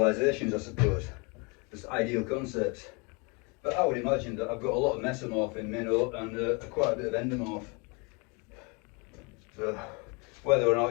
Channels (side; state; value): right; quieter; 31.2 dB